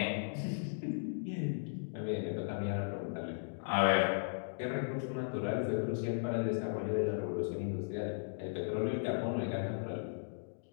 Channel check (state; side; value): silent; right; digital silence